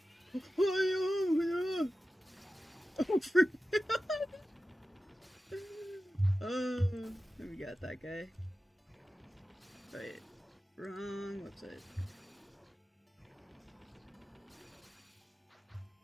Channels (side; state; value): both; normal; correlation 0.94